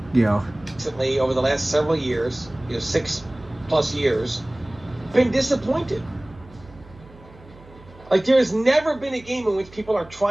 Recently, over the last several years, 6+ years, been disappointed. Like, there has never been a game in which people are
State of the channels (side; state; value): right; noise; hum, 22 dB below the sound